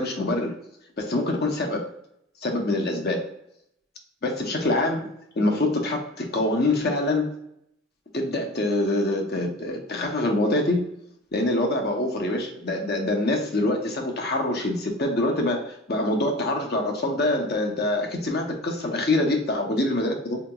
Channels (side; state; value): both; normal; correlation 0.36